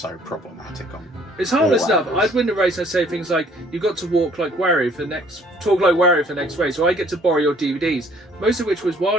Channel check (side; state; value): both; normal; correlation 0.60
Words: problematic on. It's harmless enough. angles. I'd win the race. I'd say things like, "You got to talk like Wario for the next race," or "I get to borrow your DVDs," most of which was